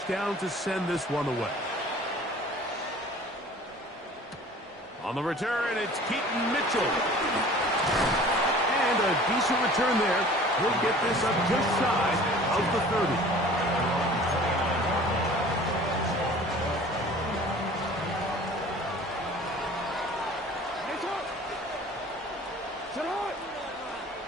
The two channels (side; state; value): both; normal; correlation 0.46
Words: to send this one away. On the return, it's Keaton Mitchell. And a decent return there. He'll get this up just shy of the 30.